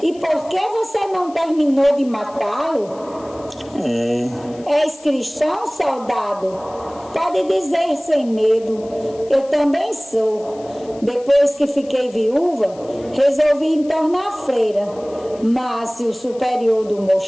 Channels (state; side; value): noise; left; hiss, 25 dB below the sound